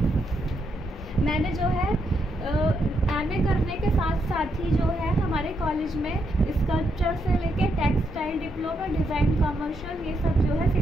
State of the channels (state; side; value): normal; both; correlation 0.80